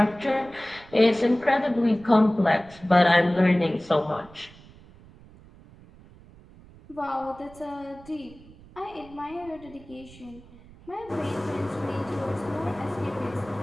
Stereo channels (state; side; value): noise; right; rumble, 22 dB below the sound